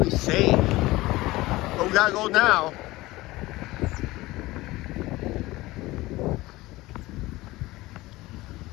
safe. But we gotta go now.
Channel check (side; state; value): right; quieter; 19.2 dB